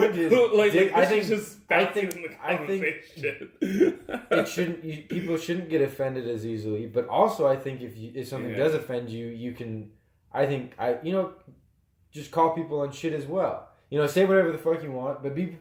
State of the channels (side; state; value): both; identical; correlation 1.00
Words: is, I think it shouldn't. People shouldn't get offended as easily. But also, I think if something does offend you, you can. Just call people on shit as well. You know, say whatever the fuck you want, but be